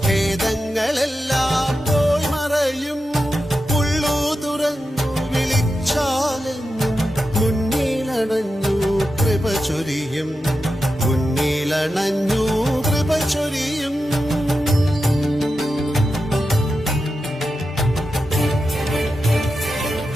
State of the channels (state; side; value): normal; both; correlation 0.90